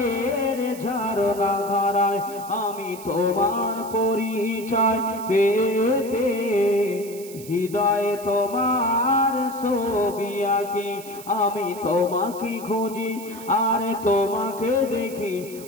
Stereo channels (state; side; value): noise; right; hiss, 16 dB below the sound